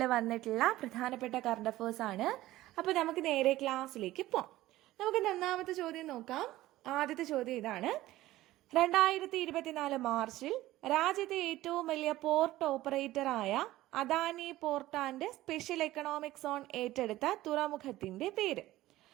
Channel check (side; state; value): left; quieter; 16.1 dB